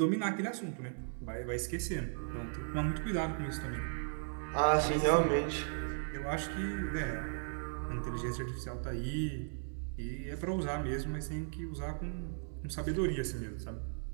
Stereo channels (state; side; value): silent; left; digital silence